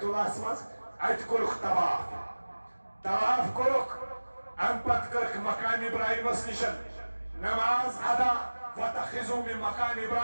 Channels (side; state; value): both; inverted; correlation -1.00